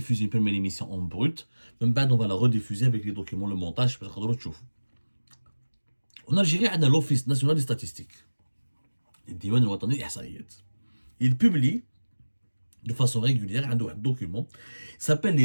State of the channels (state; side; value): inverted; both; correlation -1.00